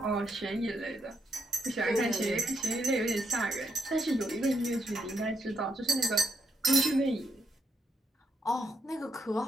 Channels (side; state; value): both; normal; correlation 0.78